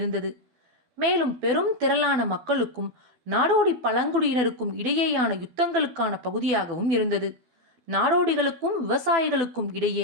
மேலும் பெரும் திரளான மக்களுக்கும் நாடோடி பழங்குடியினருக்கும் இடையேயான யுத்தங்களுக்கான பகுதியாகவும் இருந்தது. நாடோடிகளுக்கும் விவசாயிகளுக்கும்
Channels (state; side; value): late; left; 12 ms